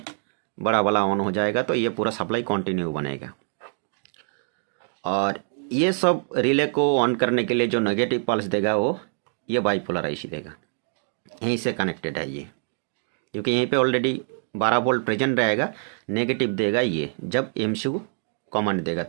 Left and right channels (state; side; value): silent; left; 57 dB below the other